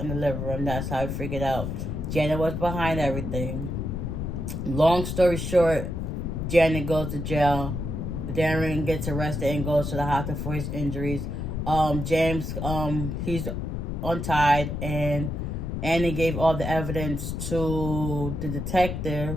in the living room. That's how I figured out Janet was behind everything. Long story short, Janet goes to jail. Darren gets arrested and goes to the hospital for his injuries. James, he's untied, and Annie gave all the evidence to the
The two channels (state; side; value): noise; left; rumble, 3 dB below the sound